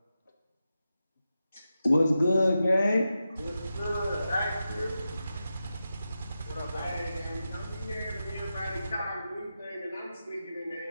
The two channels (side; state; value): both; inverted; correlation -0.90